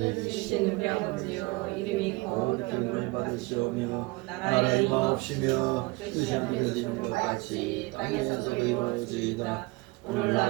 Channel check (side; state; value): left; quieter; 24.0 dB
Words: 주신 우리 아버지여 이름이 거룩히 여김을 받으시오며 나라의 임하옵시며 뜻이 하늘에서 이룬 것 같이 땅에서도 이루어지이다.